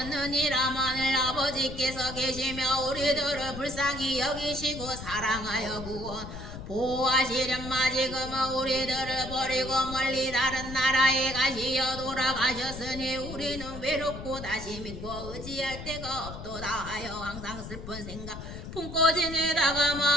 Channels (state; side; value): noise; left; rumble, 10 dB below the sound